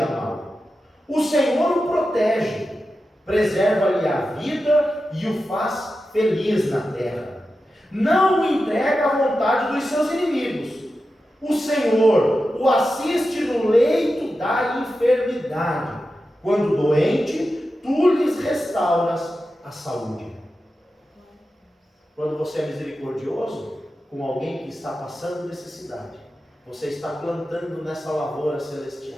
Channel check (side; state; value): both; normal; correlation 0.91